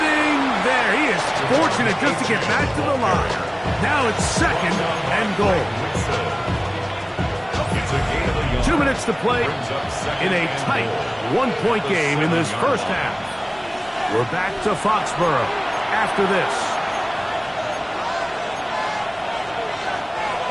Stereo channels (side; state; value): both; identical; correlation 1.00